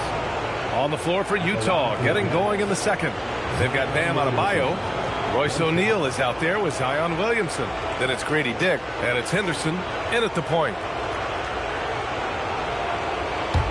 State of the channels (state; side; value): identical; both; correlation 1.00